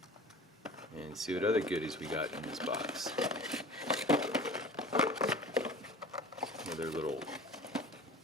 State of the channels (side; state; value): both; normal; correlation 0.40